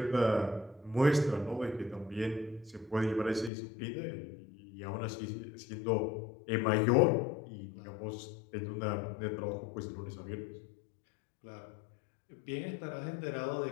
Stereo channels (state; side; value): drops out; right; at 3.5 s